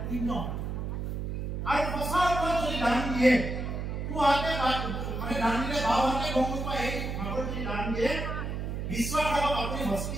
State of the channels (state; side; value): noise; right; hum, 4 dB below the sound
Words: পুণ্য আৰু সঁচা অৰ্থত যদি দান দিয়ে পুৱাতে মানে দান দিলে বাও হাতে গম নোপায় এই ভাগৰ যদি দান দিয়ে বিশ্বাস ৰাখক আপুনি